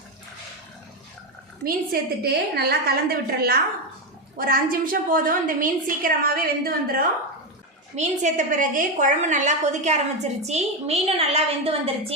மீன் சேர்த்துட்டு நல்லா கலந்து விட்டுடலாம். ஒரு 5 நிமிஷம் போதும். இந்த மீன் சீக்கிரமாகவே வெந்து வந்துடும். மீன் சேர்த்த பிறகு குழம்பு நல்லா கொதிக்க ஆரம்பிச்சிருச்சு. மீனும் நல்லா வெந்து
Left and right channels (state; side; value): normal; both; correlation 0.10